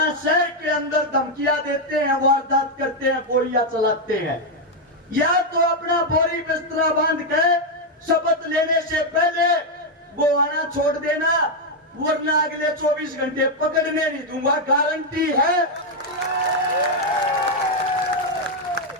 शहर के अंदर धमकियां देते हैं, वारदात करते हैं, गोलियां चलाते हैं, या तो अपना बोरी बिस्तरा बांध के शपथ लेने से पहले गोहाना छोड़ देना, वरना अगले 24 घंटे पकड़ने नहीं दूंगा, गारंटी है।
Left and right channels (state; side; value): normal; both; correlation 0.01